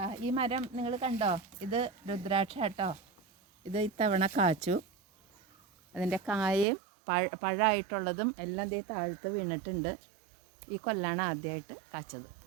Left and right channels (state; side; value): drops out; left; at 6.7 s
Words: ഈ മരം നിങ്ങൾ കണ്ടോ? ഇത് രുദ്രാക്ഷ കേട്ടോ. ഇത് ഇത്തവണ കാച്ചു. അതിൻ്റെ കായയും പഴമായിട്ടുള്ളതും എല്ലാം ദേ താഴത്ത് വീണിട്ടുണ്ട്. ഈ കൊല്ലാണ് ആദ്യമായിട്ട് കാച്ചത്.